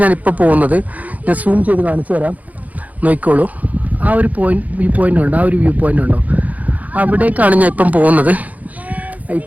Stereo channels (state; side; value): late; left; 0.076 ms